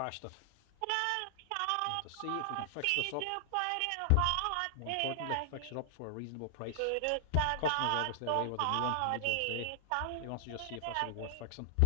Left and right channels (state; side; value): different; both; correlation -0.01